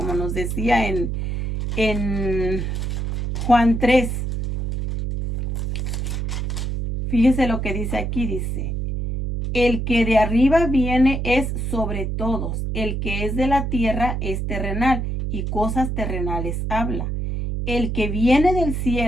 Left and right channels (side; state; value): right; noise; hum, 2 dB below the sound